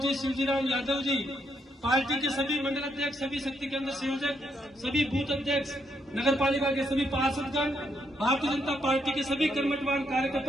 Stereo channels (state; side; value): normal; both; correlation 0.77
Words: शिवजीराम यादव जी, पार्टी के सभी मंडल अध्यक्ष, सभी शक्ति केंद्र संयोजक, सभी बूथ अध्यक्ष, नगर पालिका के सभी पार्षदगण, भारतीय जनता पार्टी के सभी कर्मठवान